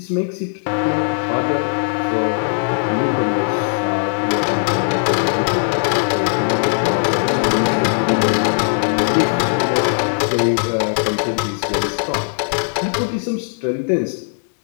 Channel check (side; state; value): right; silent; 67 dB below the other